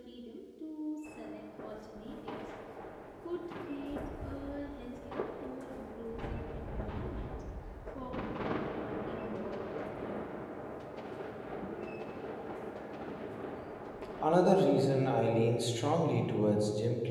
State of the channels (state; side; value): identical; both; correlation 1.00